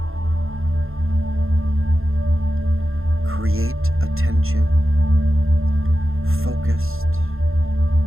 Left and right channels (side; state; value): left; late; 0.61 ms